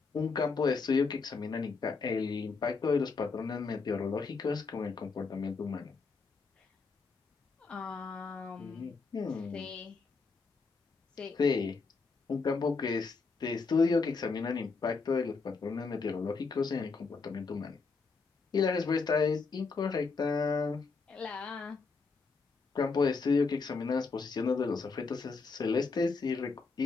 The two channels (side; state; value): right; quieter; 4.5 dB